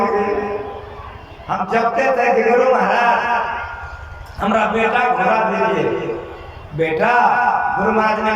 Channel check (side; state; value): both; identical; correlation 1.00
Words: गए। हम जपते थे कि गुरु महाराज हमारा बेटा घुरा दीजिए। बेटा गुरु महाराज ने